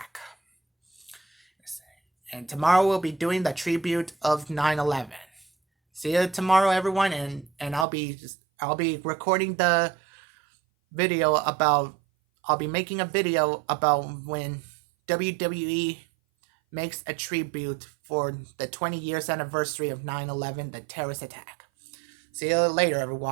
And tomorrow we'll be doing the tribute of 9/11. See you tomorrow, everyone, and I'll be recording the video about. I'll be making a video about when WWE makes a tribute for the 20 years anniversary of 9/11, the terrorist attack. See you later,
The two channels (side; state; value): left; drops out; at 7.9 s